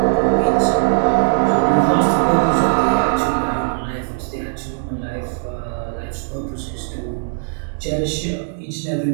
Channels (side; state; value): left; silent; digital silence